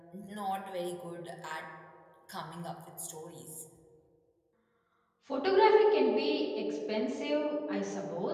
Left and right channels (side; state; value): both; identical; correlation 1.00